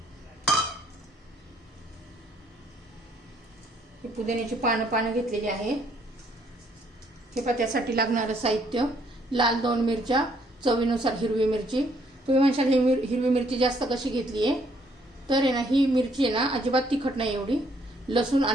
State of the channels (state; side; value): normal; both; correlation 0.67